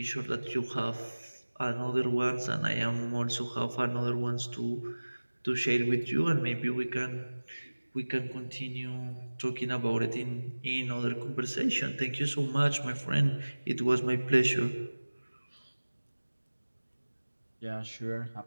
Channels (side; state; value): both; inverted; correlation -1.00